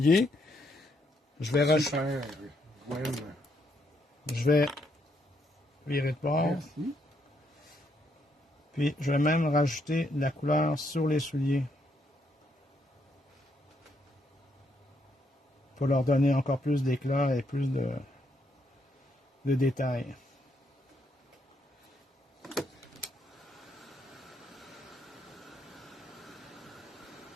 je vais rajouter. Je vais virer de bord. Merci. Puis je vais même rajouter de la couleur sur les souliers. Pour leur donner encore plus d'éclat et plus de détails.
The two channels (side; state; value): both; normal; correlation 0.75